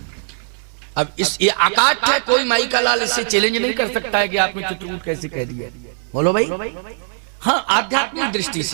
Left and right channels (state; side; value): silent; left; digital silence